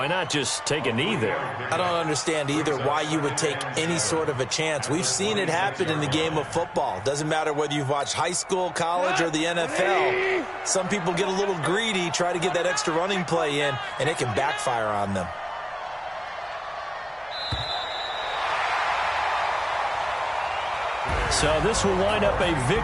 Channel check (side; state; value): both; identical; correlation 1.00